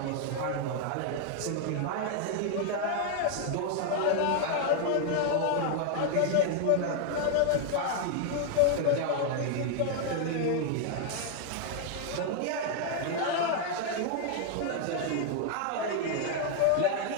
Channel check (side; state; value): both; different; correlation 0.00